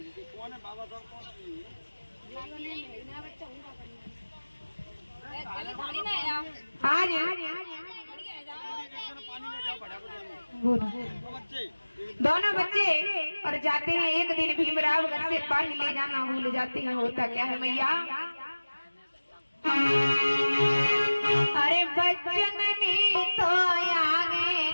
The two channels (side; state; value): both; inverted; correlation -1.00